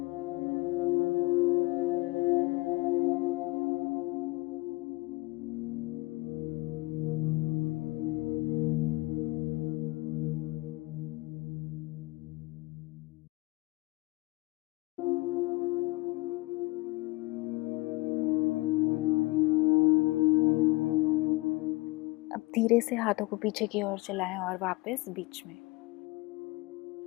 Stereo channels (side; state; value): right; quieter; 23.3 dB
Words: अब धीरे से हाथों को पीछे की ओर चलाएं और वापस बीच में।